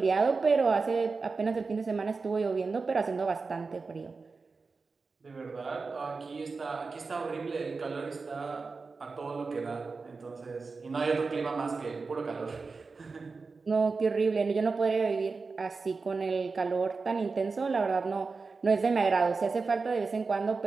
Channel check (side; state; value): left; quieter; 4.3 dB